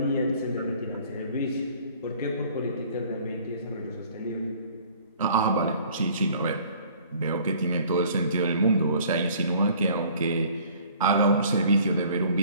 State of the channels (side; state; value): both; inverted; correlation -0.54